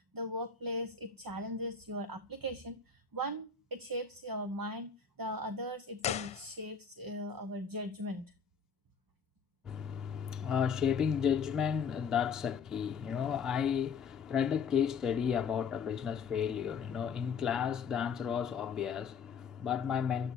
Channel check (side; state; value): right; quieter; 6.1 dB